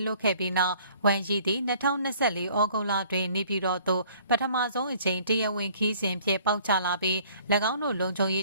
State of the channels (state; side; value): inverted; both; correlation -0.55